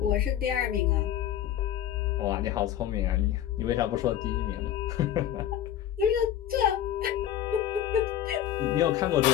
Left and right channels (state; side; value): quieter; right; 11.0 dB